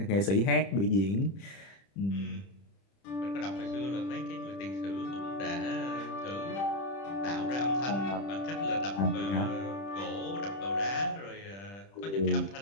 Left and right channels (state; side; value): late; right; 30 ms